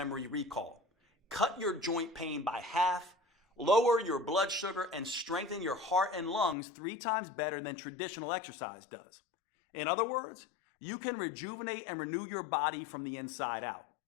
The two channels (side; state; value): right; drops out; at 6.6 s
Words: recall, cut your joint pain by half, lower your blood sugar, and strengthen your heart and lungs 3 times better than traditional exercise does. In other words, you can rejuvenate and renew your body from the inside out.